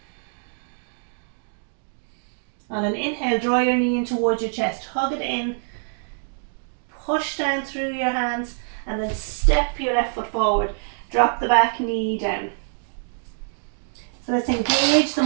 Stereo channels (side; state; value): left; silent; digital silence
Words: On an inhale, draw your knee in towards your chest, hug it in, push down through your hands, and then step your left foot forward. Drop the back knee down. So let's engage the